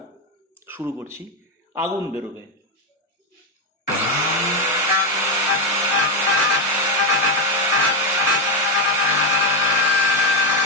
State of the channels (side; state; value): both; normal; correlation 0.07